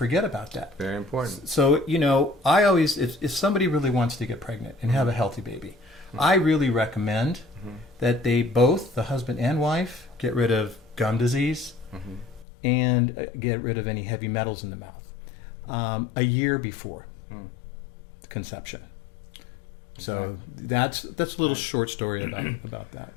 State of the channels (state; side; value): drops out; right; at 12.5 s